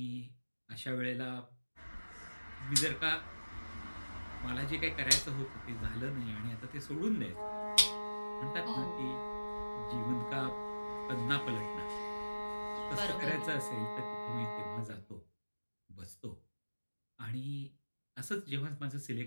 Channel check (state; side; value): inverted; both; correlation -1.00